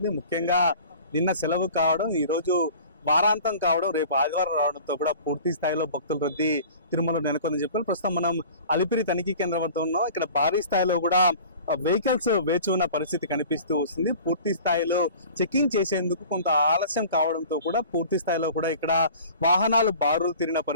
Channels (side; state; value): both; inverted; correlation -0.43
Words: ముఖ్యంగా నిన్న సెలవు కావడం, ఈ రోజు వారాంతం కావడం, రేపు ఆదివారం రావడంతో కూడా పూర్తి స్థాయిలో భక్తుల రద్దీ తిరుమలలో నెలకొందని చెప్పారు. ప్రస్తుతం మనం అలిపిరి తనిఖీ కేంద్రం వద్ద ఉన్నాం. ఇక్కడ భారీ స్థాయిలో కూడా వెహికల్స్ వేచి ఉన్న పరిస్థితి కనిపిస్తూ వస్తుంది. పూర్తి స్థాయిలో చెకింగ్ చేసేందుకు కొంత ఆలస్యం కావడంతో కూడా పూర్తి స్థాయిలో కూడా ఇక్కడ వాహనాలు బారులు తిరిగిన